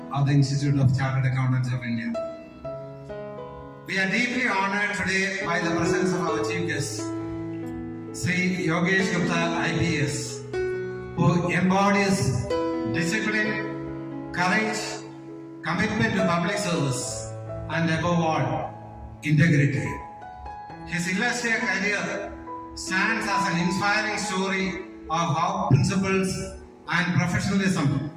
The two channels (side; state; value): both; identical; correlation 1.00